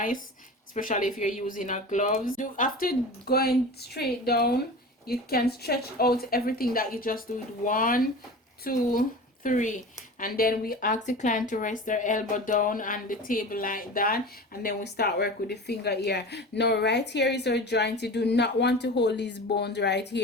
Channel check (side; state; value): both; normal; correlation 0.34